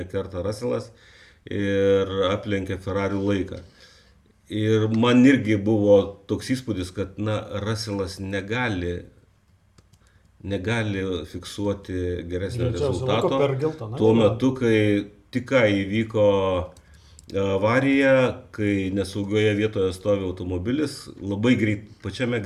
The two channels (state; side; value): identical; both; correlation 1.00